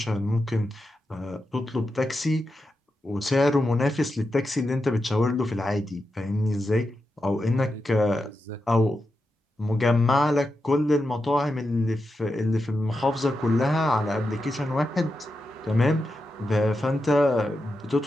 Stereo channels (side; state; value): both; normal; correlation 0.88